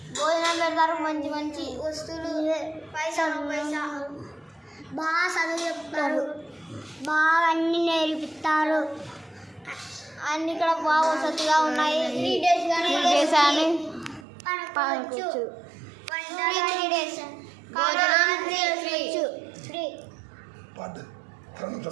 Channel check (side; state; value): left; drops out; at 14.2 s